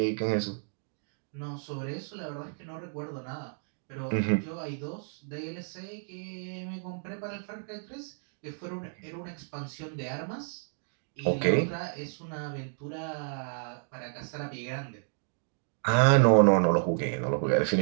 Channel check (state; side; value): silent; left; 57 dB below the other